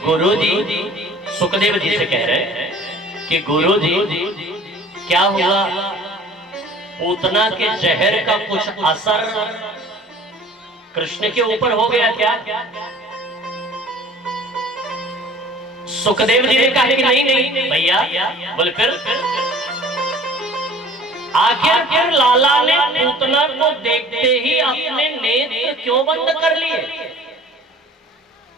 गुरुजी सुखदेव जी से कह रहे हैं कि गुरुजी क्या हुआ, पूतना के जहर का कुछ असर कृष्ण के ऊपर हो गया क्या? सुखदेव जी ने कहा कि नहीं नहीं भैया, बोले फिर आखिर लाला ने पूतना को देखते ही अपने नेत्र क्यों बंद कर लिए?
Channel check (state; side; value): normal; both; correlation 0.48